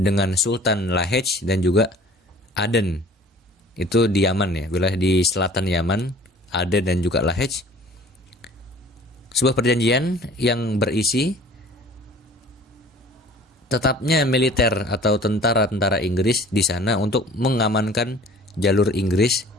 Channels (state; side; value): normal; both; correlation 0.48